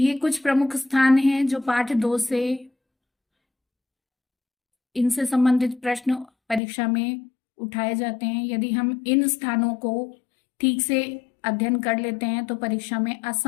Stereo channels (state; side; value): drops out; right; at 6.6 s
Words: कुछ प्रमुख स्थान हैं जो पाठ 2 से इनसे संबंधित प्रश्न परीक्षा में उठाए जाते हैं। यदि हम इन स्थानों को ठीक से अध्ययन कर लेते हैं तो परीक्षा में